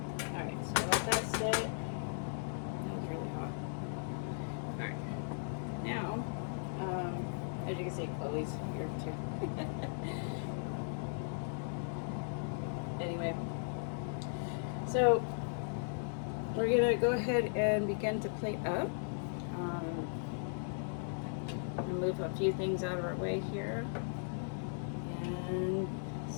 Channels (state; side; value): silent; right; digital silence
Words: Alright, so let that sit. Now, as you can see, Chloe's here too. Anyway, so we're gonna go ahead and begin to plate up. Move a few things out of our way here and